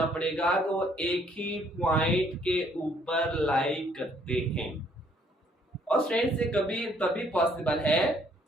पड़ेगा कि वो एक ही पॉइंट के ऊपर लाई करते हैं। और स्ट्रेंस से कभी तभी पॉसिबल है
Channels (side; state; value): both; normal; correlation 0.65